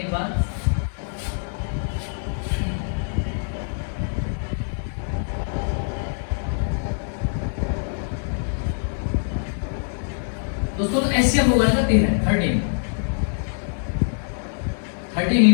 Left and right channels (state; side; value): silent; right; digital silence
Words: बार। दोस्तों तो एचसीएफ होगा इनका 13